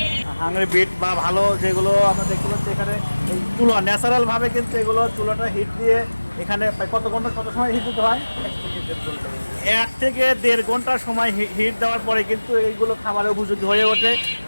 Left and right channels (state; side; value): inverted; both; correlation -1.00